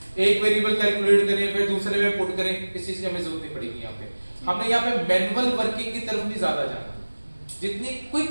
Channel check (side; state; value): both; inverted; correlation -1.00